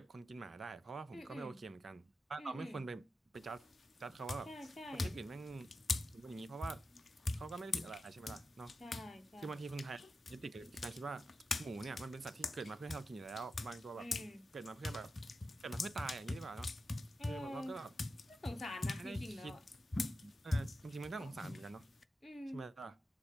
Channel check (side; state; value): both; normal; correlation 0.90